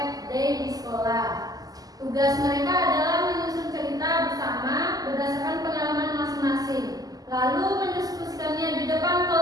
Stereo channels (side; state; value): left; late; 0.18 ms